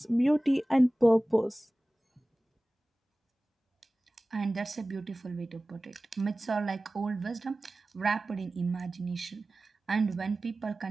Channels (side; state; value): both; normal; correlation 0.97